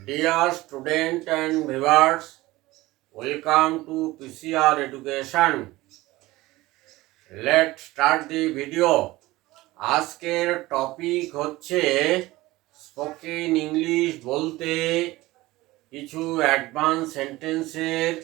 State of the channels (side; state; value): left; quieter; 18.9 dB